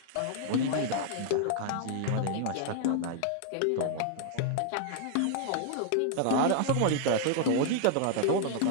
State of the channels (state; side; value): different; both; correlation 0.00